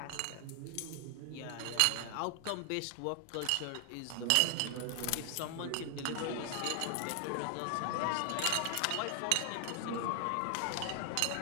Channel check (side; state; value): both; different; correlation 0.00